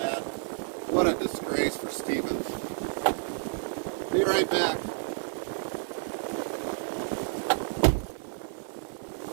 What a disgrace for Stevens. Be right back.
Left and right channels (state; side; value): silent; left; 58 dB below the other